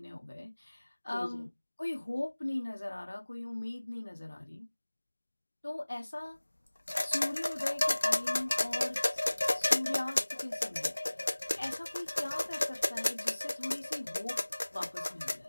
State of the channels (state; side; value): inverted; both; correlation -1.00